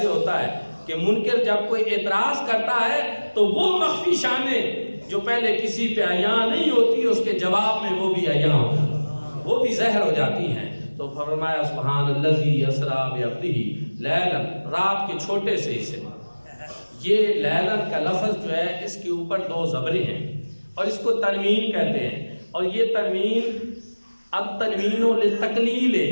ہوتا ہے کہ منکر جب کوئی اعتراض کرتا ہے تو وہ مخفی شانیں جو پہلے کسی پہ عیاں نہیں ہوتی اس کے جواب میں وہ بھی عیاں ہوتی ہیں، وہ بھی ظاہر ہو جاتی ہیں۔ تو فرمایا سبحان الذی اسریٰ بعبدہ لیلا، رات کے چھوٹے سے حصے میں۔ یہ لیلا کا لفظ جو ہے اس کے اوپر دو زبریں ہیں اور اس کو تنوین کہتے ہیں، اور یہ تنوین التنوین للتقلیل ہے،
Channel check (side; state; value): both; inverted; correlation -1.00